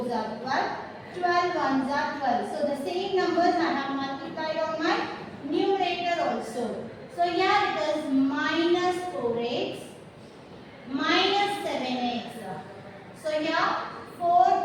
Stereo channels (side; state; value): both; identical; correlation 1.00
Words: are 12. 12 ones are 12. So the same numbers I have multiplied on my numerator also. So here it is minus 4x minus 7x. So here